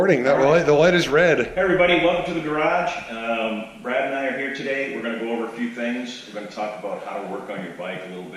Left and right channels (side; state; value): both; identical; correlation 1.00